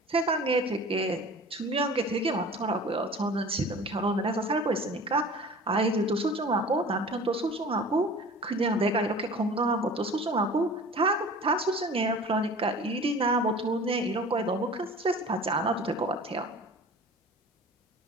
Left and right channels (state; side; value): normal; both; correlation 0.42